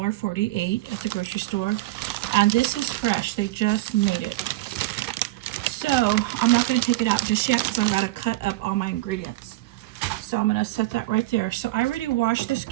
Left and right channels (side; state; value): left; quieter; 17.7 dB